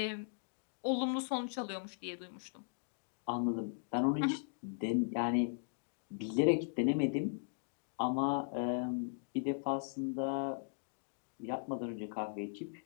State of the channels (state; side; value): silent; right; digital silence